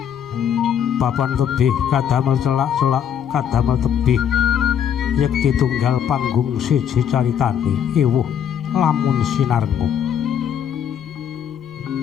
Papan tebih kadamel celak-celak kadamel tebih yekti tunggal panggung siji caritane ewuh lamun sinarngu.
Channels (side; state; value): right; quieter; 8.8 dB